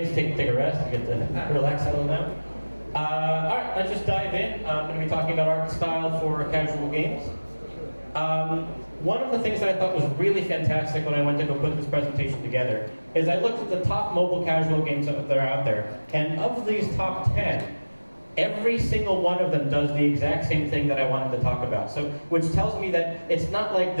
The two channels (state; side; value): inverted; both; correlation -1.00